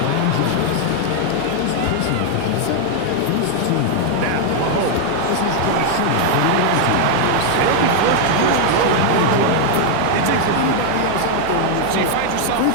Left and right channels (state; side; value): different; both; correlation 0.00